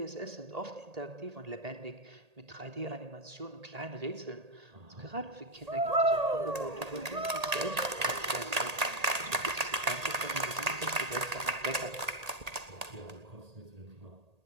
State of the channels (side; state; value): left; late; 1.8 ms